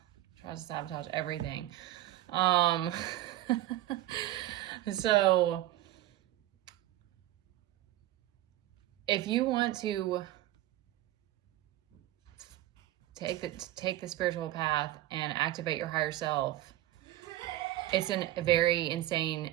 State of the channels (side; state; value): left; quieter; 14.7 dB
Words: tries to sabotage everything. So if you want to take the spiritual path and activate your higher self, it's a very insane